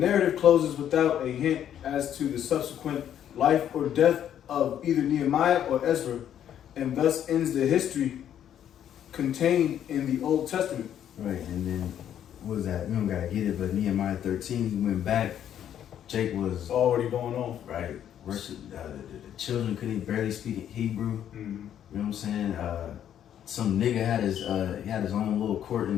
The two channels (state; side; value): quieter; right; 10.1 dB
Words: closes without a hint as to the subsequent life or death of either Nehemiah or Ezra, and thus ends the history contained in the Old Testament. Right, and then what was that? We don't gotta get it, but Nehemiah 13, he went back. Jake was It's already going on. right. Worship, the children couldn't barely speak Hebrew. Mm-hmm. You know what I'm saying? Some nigga had his he had his own little court